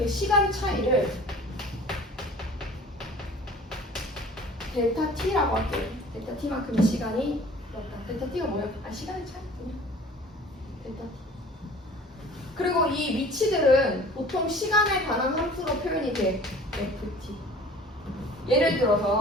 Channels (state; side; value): normal; both; correlation 0.46